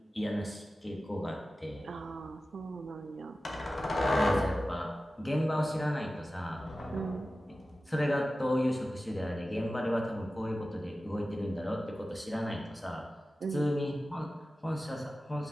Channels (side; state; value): both; normal; correlation 0.95